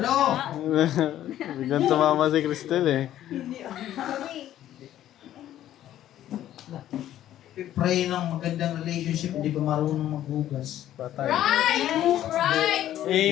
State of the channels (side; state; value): right; quieter; 12.3 dB